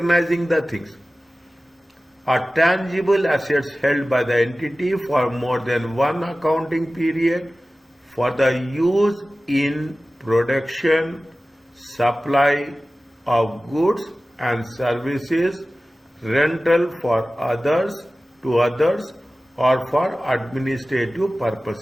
the things. Are tangible assets held by the entity for more than one accounting period for the use in production, supply of goods and services, rental for others to others, or for administrative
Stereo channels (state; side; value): normal; both; correlation 0.96